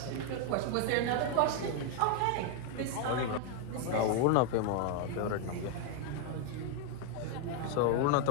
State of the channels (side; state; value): both; different; correlation 0.00